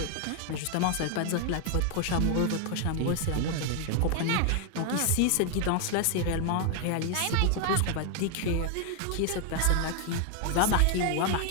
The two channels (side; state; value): both; different; correlation 0.00